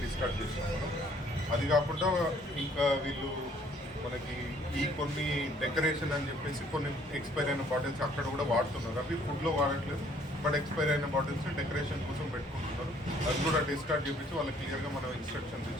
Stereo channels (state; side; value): normal; both; correlation 0.61